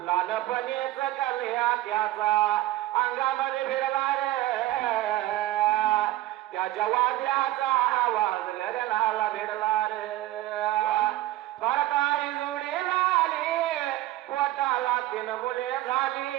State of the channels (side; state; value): left; quieter; 16.0 dB